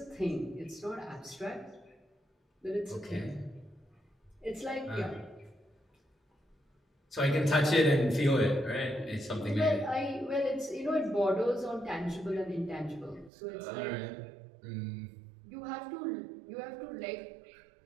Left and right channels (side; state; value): left; drops out; at 13.3 s